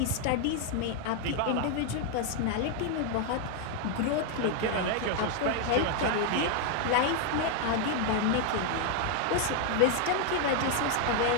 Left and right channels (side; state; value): both; different; correlation 0.01